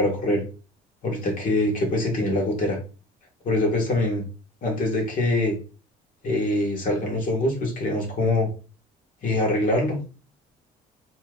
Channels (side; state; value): both; normal; correlation 0.40